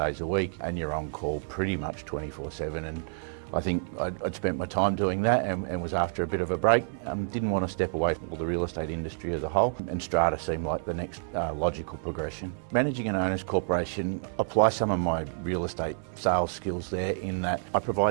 a week, and you're on call pretty much 24/7. And I think I'd spent my time doing that and was after a bit of a break. Didn't want to step away from the real estate industry as a whole, and strata seemed like the next logical progression. Managing an owners corporation, apply some of my real estate sales skills there in that I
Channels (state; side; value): silent; left; digital silence